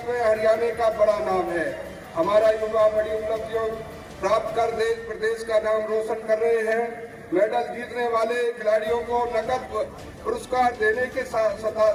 में हरियाणा का बड़ा नाम है। हमारा युवा बड़ी उपलब्धियों प्राप्त कर देश प्रदेश का नाम रोशन कर रहे हैं। मेडल जीतने वाले खिलाड़ियों को नकद पुरस्कार देने के साथ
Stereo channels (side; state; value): both; identical; correlation 1.00